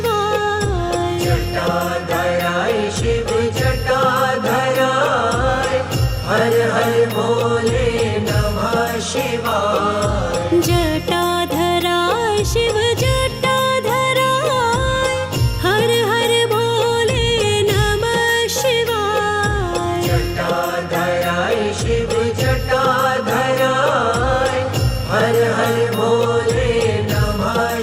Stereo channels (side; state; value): both; identical; correlation 1.00